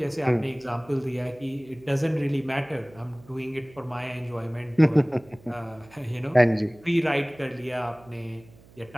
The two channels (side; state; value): right; noise; hum, 25 dB below the sound